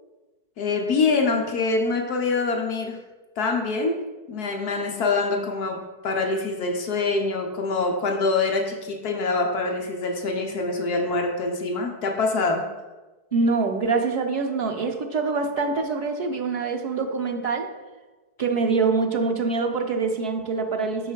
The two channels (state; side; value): late; right; 4.6 ms